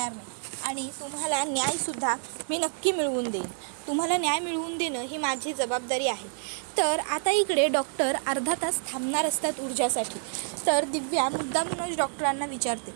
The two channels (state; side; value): silent; left; 59 dB below the other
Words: नाही आणि तुम्हाला न्यायसुद्धा मी नक्की मिळवून देईन. तुम्हाला न्याय मिळवून देणं ही माझी जबाबदारी आहे. तर आता इकडे डॉक्टर अर्धा तास थांबणार असतात ऊर्जासाठी. तर दिव्या मुद्दामूनच डॉक्टरांना विचारते